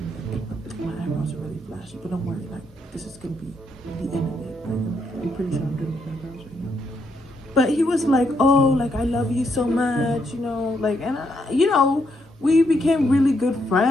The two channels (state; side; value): normal; both; correlation 0.77